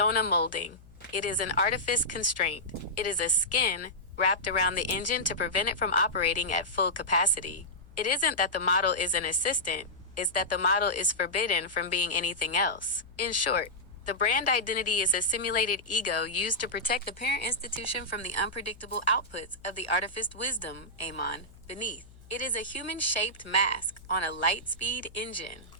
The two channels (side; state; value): left; noise; hum, 23 dB below the sound